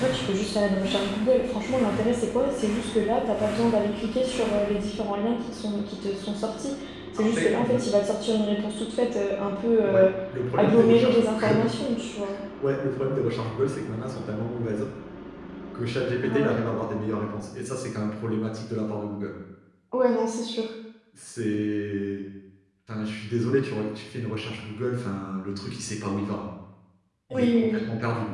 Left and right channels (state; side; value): identical; both; correlation 1.00